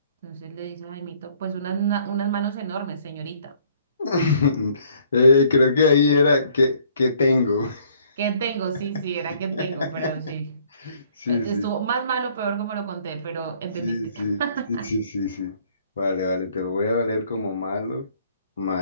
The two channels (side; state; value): both; inverted; correlation -0.61